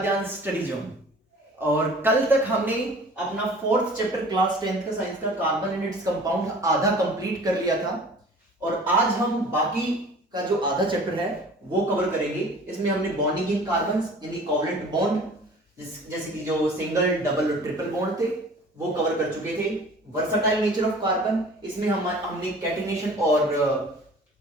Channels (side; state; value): both; normal; correlation 0.46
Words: स्टडी जोन। और कल तक हमने अपना फोर्थ चैप्टर क्लास 10th का साइंस का कार्बन एंड इट्स कंपाउंड आधा कंप्लीट कर लिया था। और आज हम बाकी का जो आधा चैप्टर है वो कवर करेंगे। इसमें हमने बॉन्डिंग इन कार्बन्स यानी कोवलेंट बॉन्ड जैसे कि जो सिंगल डबल और ट्रिपल बॉन्ड थे वो कवर कर चुके थे। वर्सटाइल नेचर ऑफ कार्बन, इसमें हमने कैटिनेशन और